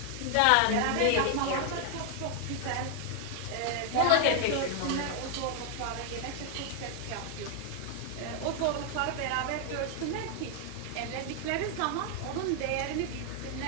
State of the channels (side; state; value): both; different; correlation 0.00